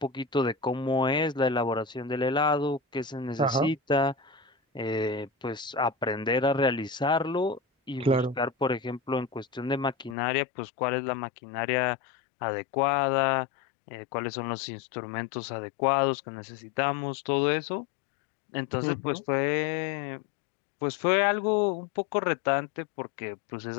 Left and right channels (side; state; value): right; drops out; at 10.2 s